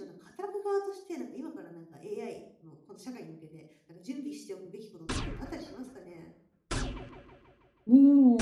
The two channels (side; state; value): both; identical; correlation 1.00